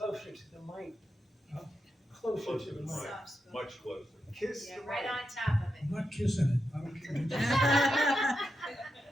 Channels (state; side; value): normal; both; correlation 0.86